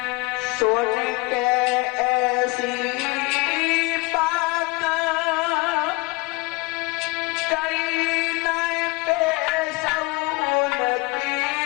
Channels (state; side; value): quieter; right; 24.6 dB